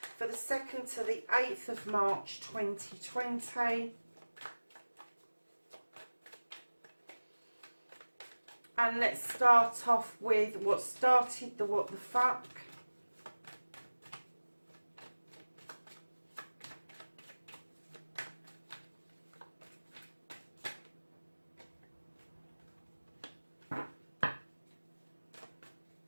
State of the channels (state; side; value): inverted; both; correlation -1.00